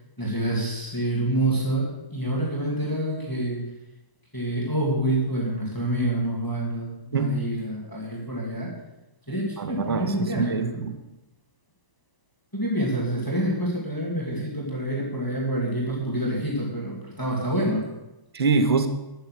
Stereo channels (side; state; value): right; late; 1.0 ms